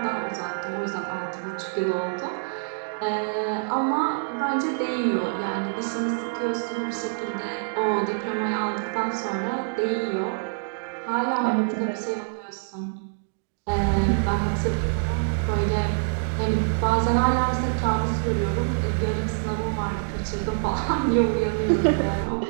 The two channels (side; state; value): left; silent; digital silence